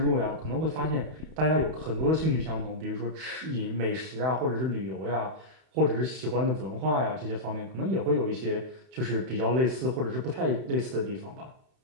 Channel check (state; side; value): late; left; 31 ms